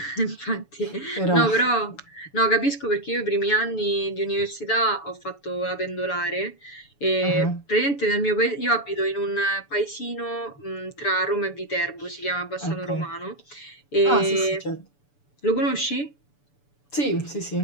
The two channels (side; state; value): right; late; 6.9 ms